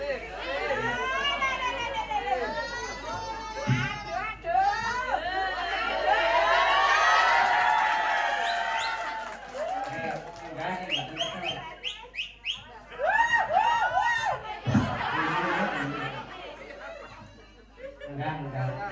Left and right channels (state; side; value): identical; both; correlation 1.00